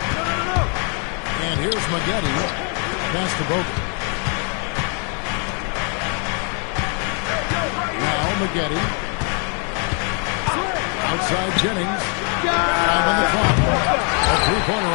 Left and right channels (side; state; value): right; quieter; 39.0 dB